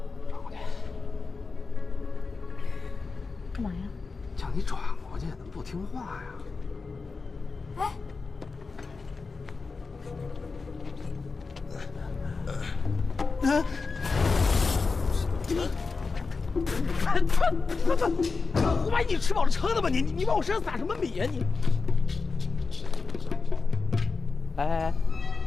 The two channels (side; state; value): right; quieter; 4.3 dB